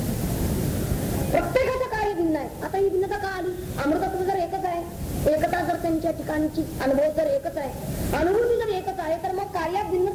प्रत्येकाचं कार्य भिन्न आहे. आता ही भिन्नता का आली? अमृतत्व जर एकच आहे, एकता जर त्यांच्या ठिकाणची अनुभव जर एकच आहे, अनुभूती जर एकच आहे तर मग कार्यात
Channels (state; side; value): identical; both; correlation 1.00